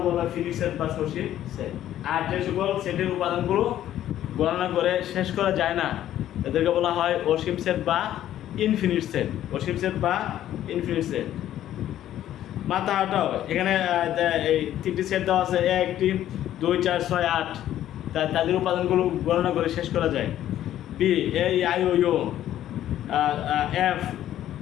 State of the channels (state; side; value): quieter; right; 12.2 dB